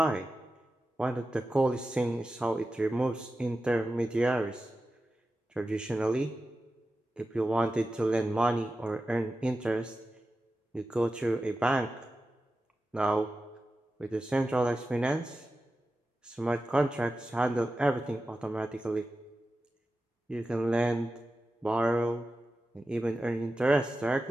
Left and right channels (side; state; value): both; normal; correlation 0.92